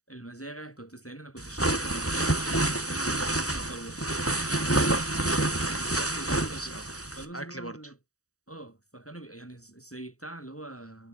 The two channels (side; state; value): right; late; 0.66 ms